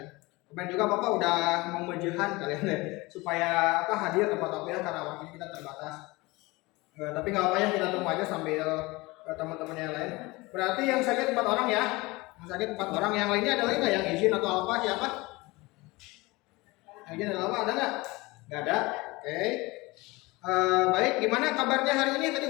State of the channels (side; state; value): right; quieter; 22.8 dB